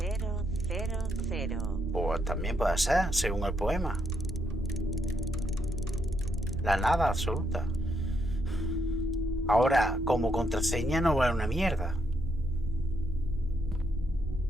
Pues también puede ser, según el poema. La nada absoluta. Ahora, como contraseña no vale una mierda.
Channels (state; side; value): normal; both; correlation 0.77